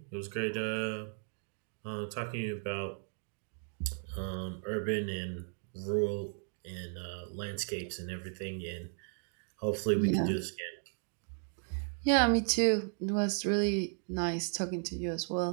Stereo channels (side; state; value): left; silent; 54 dB below the other